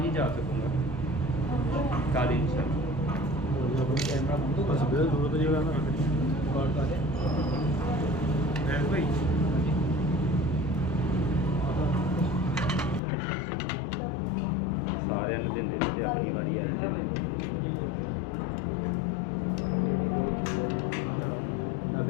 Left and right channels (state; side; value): drops out; right; at 13.0 s